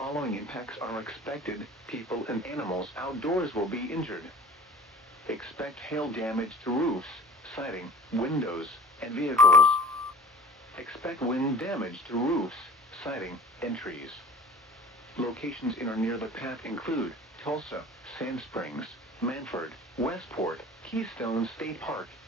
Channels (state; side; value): normal; both; correlation 0.44